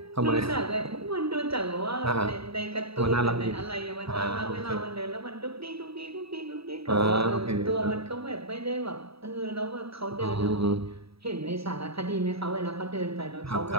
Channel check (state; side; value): late; left; 0.77 ms